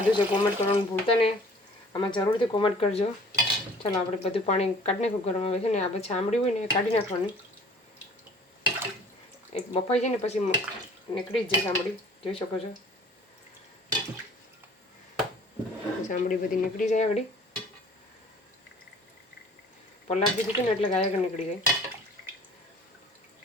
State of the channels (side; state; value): both; normal; correlation 0.51